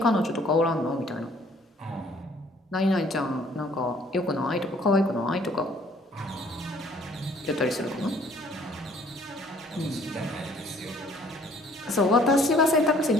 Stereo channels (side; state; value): both; normal; correlation 0.59